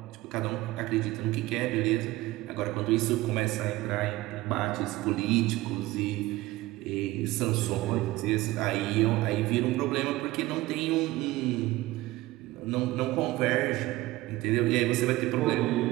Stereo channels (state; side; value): quieter; left; 18.4 dB